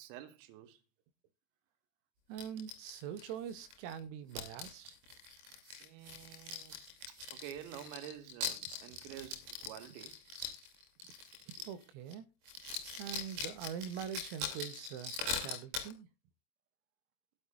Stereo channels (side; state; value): left; late; 23 ms